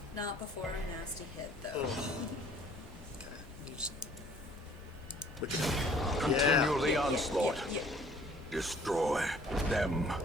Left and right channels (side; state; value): both; normal; correlation 0.56